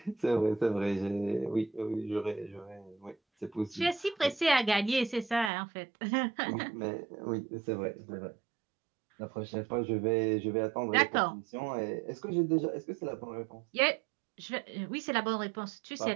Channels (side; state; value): left; drops out; at 5.5 s